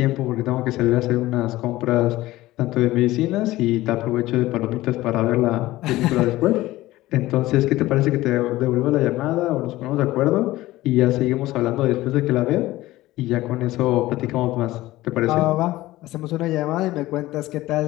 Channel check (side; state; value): right; quieter; 17.2 dB